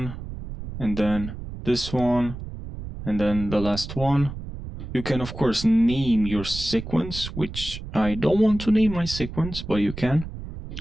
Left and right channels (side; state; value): right; noise; rumble, 10 dB below the sound